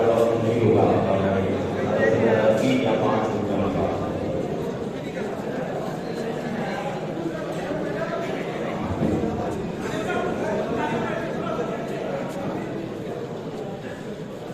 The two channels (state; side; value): identical; both; correlation 1.00